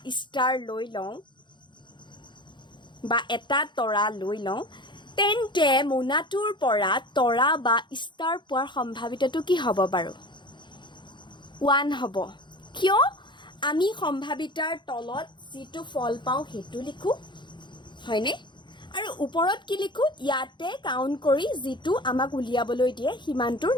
ষ্টাৰ লৈ লওঁ বা এটা তৰা লৈ লওঁ তেন্তে মোনাটোৰ পৰা তৰা বা ষ্টাৰ পোৱাৰ সম্ভাৱিতাটো কি হ'ব বাৰু 1 হ'ব কিয় আমি সম্ভাৱিতাৰ তলত যিটো ফল পাওঁ সেইটো লিখোঁ হয়নে আৰু ওপৰত কি লিখোঁ ইয়াতে কাউণ্ট কৰি যিটো আমাক উলিয়াবলৈ দিয়ে সিমানটোৰ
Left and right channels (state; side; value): late; right; 0.23 ms